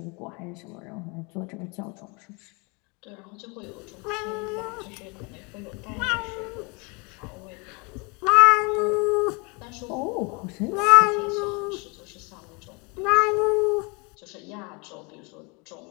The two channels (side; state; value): right; quieter; 30.3 dB